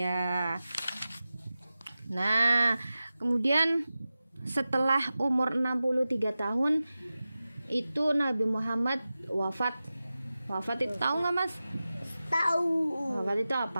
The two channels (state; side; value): inverted; both; correlation -0.95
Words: Nah, kemudian setelah umur 63 tahun itu Nabi Muhammad wafat. Wafat itu tahu nggak Mas? Tahu. Wafat itu